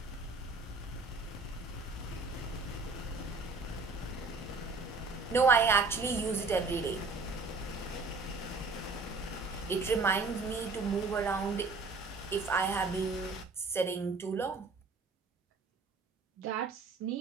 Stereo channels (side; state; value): left; quieter; 4.0 dB